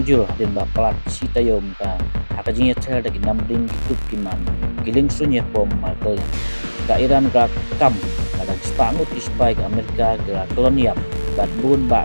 jul din ba palak sita yom ka hakajinya tel da namding gitup kiman giling sunya pom Michael ka Iran ka kam kadang spangut ispai ka Amerika ka kolonial bat bun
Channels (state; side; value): inverted; both; correlation -1.00